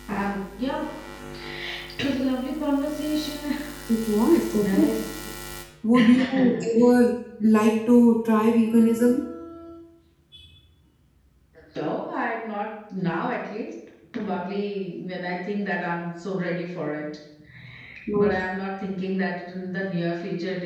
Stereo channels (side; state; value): both; identical; correlation 1.00